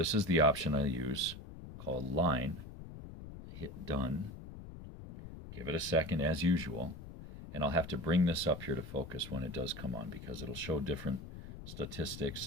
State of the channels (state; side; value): noise; left; rumble, 12 dB below the sound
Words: is the option I use called line. Hit done. Give it a second as usual. And I'll have to bring this up here to focus when it does come on because it'll show different